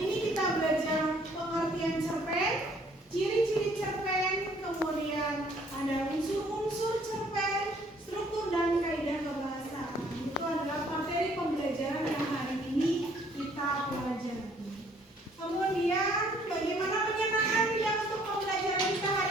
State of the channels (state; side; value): normal; both; correlation 0.61